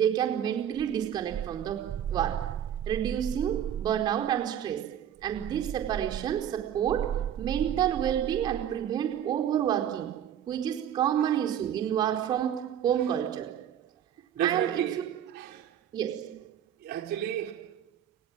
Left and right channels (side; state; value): left; quieter; 9.8 dB